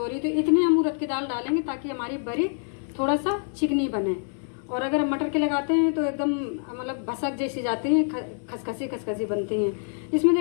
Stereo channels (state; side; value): silent; right; 61 dB below the other